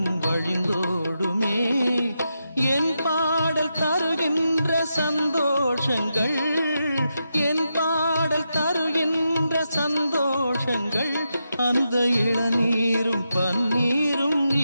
வழிந்தோடுமே என் பாடல் தருகின்ற சந்தோஷங்கள் என் பாடல் தருகின்ற சந்தோஷங்கள் அந்த இளநீரும் பன்னீரும்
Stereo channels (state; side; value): inverted; both; correlation -0.86